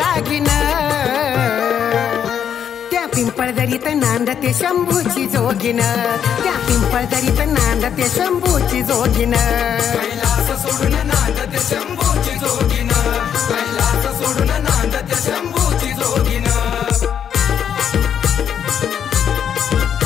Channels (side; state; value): right; quieter; 8.6 dB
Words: रागीन, त्या पिंपळदरीत नांदते शंभूची जोगीण, त्या पिंपळदरीत नांदते शंभूची जोगीण, कैलास सोडून नांदते शंभूची जोगीण, कैलास सोडून नांदते शंभूची जोगीण.